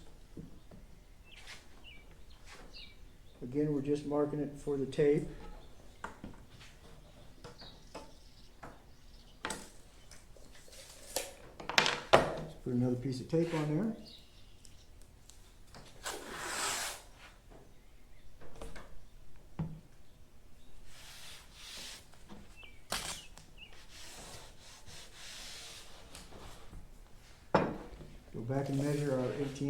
Again, we're just marking it for the tape. Put another piece of tape on there. Go back and measure our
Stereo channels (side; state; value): both; identical; correlation 1.00